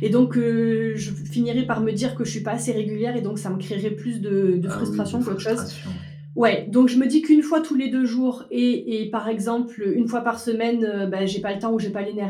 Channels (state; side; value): identical; both; correlation 1.00